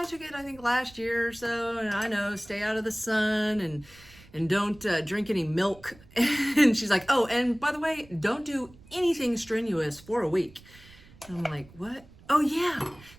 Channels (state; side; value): noise; right; rumble, 23 dB below the sound